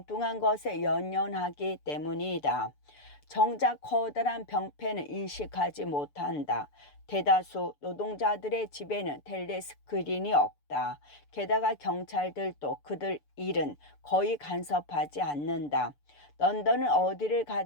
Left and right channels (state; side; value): late; right; 6.9 ms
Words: 것에 연연하기 때문이다. 정작 커다란 병폐는 인식하지 못한다. 대다수 노동자들의 집에는 텔레스크린이 없다. 게다가 경찰들도 그들 일은 거의 간섭하지 않는다. 런던은 어디를